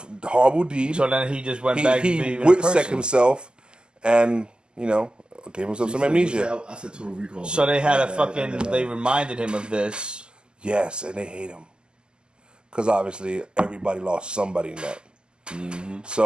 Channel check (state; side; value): late; left; 0.047 ms